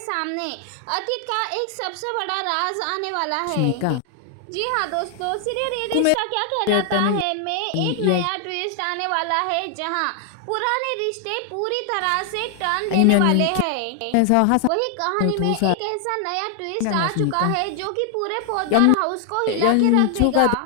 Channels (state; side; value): different; both; correlation 0.00